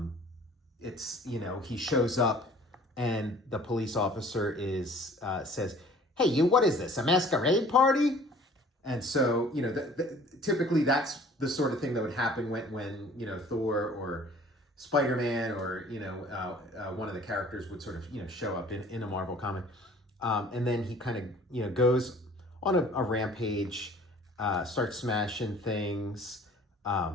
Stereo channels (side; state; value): both; normal; correlation 0.51